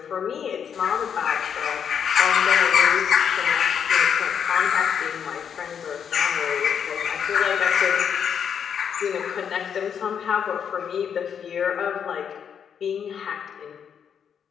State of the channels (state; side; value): quieter; right; 7.8 dB